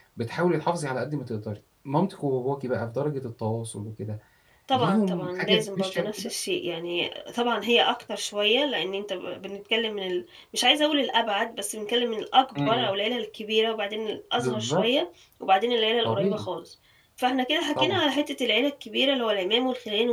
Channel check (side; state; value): both; identical; correlation 1.00